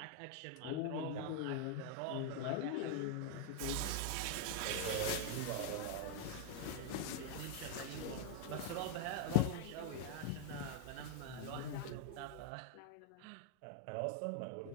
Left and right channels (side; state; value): both; different; correlation 0.00